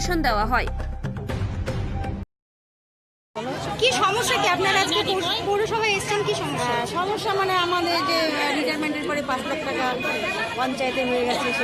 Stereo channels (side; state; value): both; identical; correlation 1.00